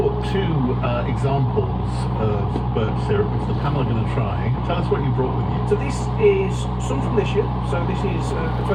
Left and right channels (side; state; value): both; identical; correlation 1.00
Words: two examples of birch syrup, which the panel are going to try. Tell us what you brought with you. So this is some from this year, so this is a